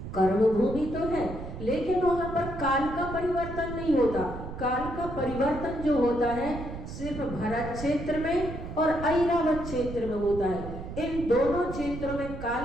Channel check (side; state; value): right; noise; rumble, 9 dB below the sound